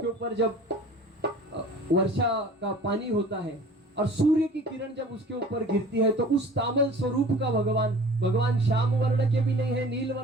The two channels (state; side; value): normal; both; correlation 0.45